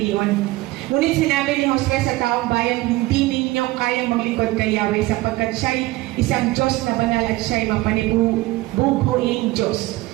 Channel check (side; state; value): left; quieter; 19.0 dB